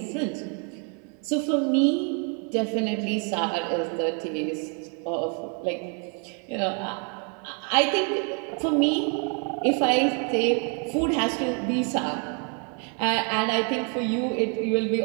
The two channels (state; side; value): quieter; left; 38.7 dB